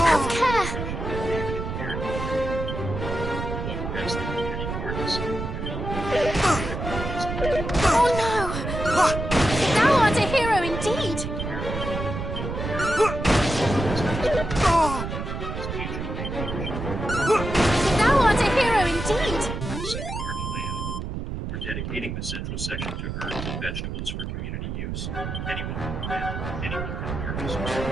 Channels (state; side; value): noise; right; rumble, 5 dB below the sound